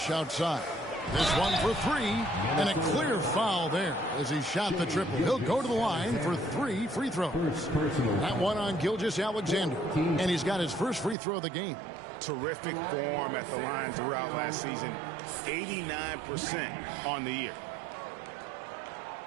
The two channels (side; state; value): left; drops out; at 11.2 s